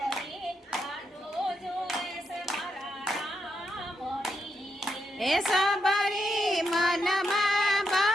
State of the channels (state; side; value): normal; both; correlation 0.82